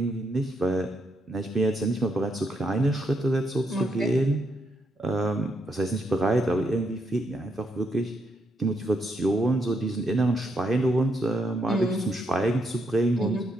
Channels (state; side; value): normal; both; correlation 0.78